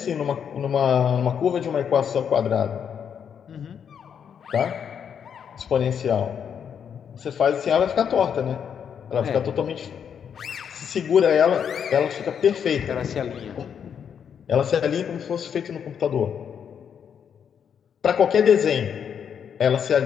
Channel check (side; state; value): right; quieter; 7.8 dB